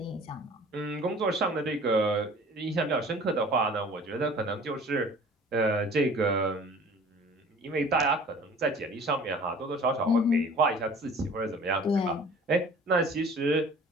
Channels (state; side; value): normal; both; correlation 0.47